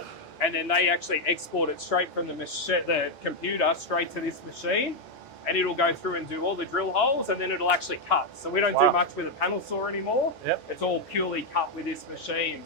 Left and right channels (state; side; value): normal; both; correlation 0.02